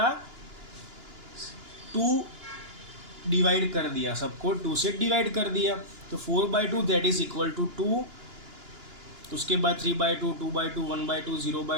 2 डिवाइड कर दिया, सबको 2 से डिवाइड कर दिया। तो 4/2 दैट इज इक्वल टू 2। उसके बाद 3/2, 2/2, 1/2,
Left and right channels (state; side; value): late; left; 2.9 ms